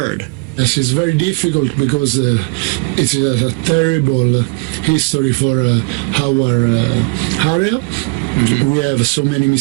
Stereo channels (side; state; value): left; quieter; 30.2 dB